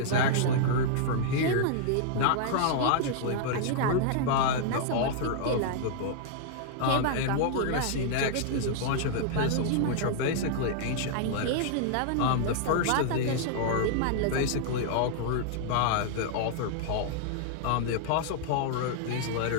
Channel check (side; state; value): both; different; correlation -0.01